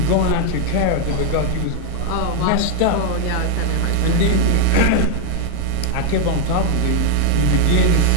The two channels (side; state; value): both; different; correlation 0.00